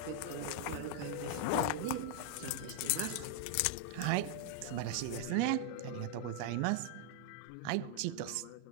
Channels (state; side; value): different; both; correlation 0.00